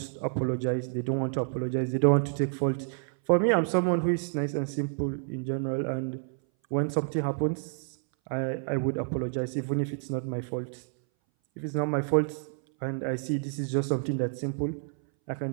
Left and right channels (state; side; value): silent; left; 59 dB below the other